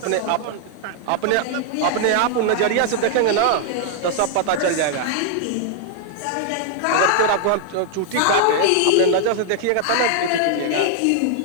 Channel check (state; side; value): different; both; correlation 0.00